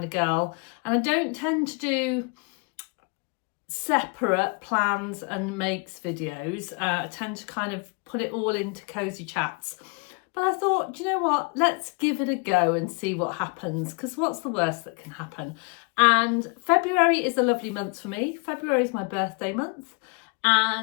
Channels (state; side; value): quieter; right; 33.1 dB